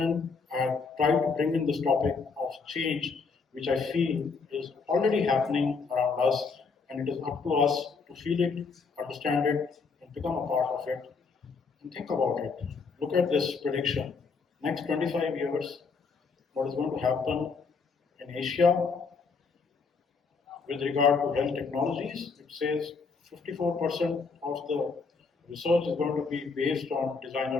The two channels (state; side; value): quieter; right; 4.8 dB